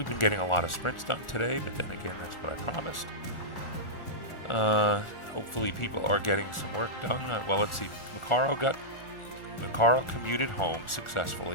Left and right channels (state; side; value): late; right; 1.4 ms